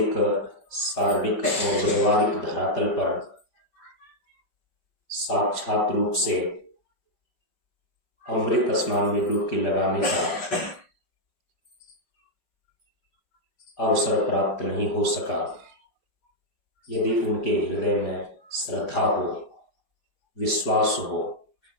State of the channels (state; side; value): late; right; 5.3 ms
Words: शारीरिक और व्यवहारिक धरातल पर साक्षात रूप से अमृत स्नान में डुबकी लगाने का अवसर प्राप्त नहीं हो सका, यदि उनके हृदय में श्रद्धा हो, विश्वास हो,